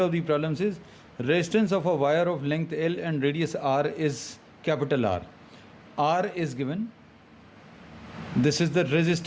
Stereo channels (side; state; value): both; identical; correlation 1.00